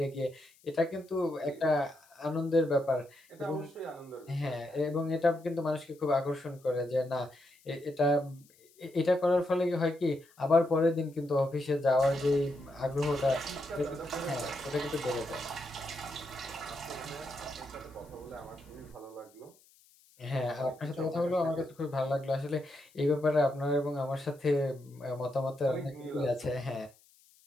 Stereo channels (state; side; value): noise; left; hiss, 29 dB below the sound